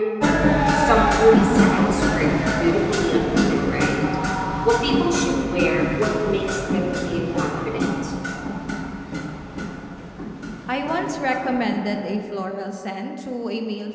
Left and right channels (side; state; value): both; identical; correlation 1.00